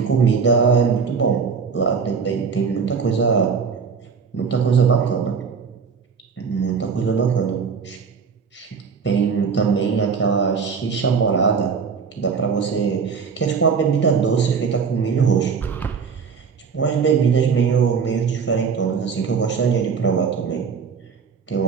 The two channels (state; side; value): quieter; left; 5.8 dB